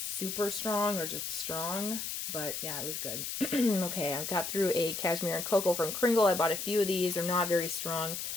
strong or just strong, but yeah, it was good. Okay, I've got through a cashmere and cocoa from Cringle. I bought a few of these. They're not very strong.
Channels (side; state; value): left; noise; hiss, 4 dB below the sound